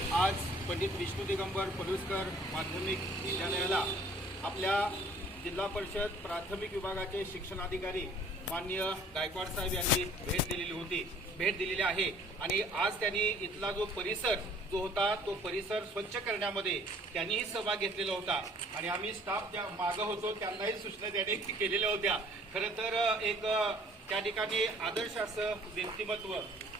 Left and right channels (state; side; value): normal; both; correlation 0.54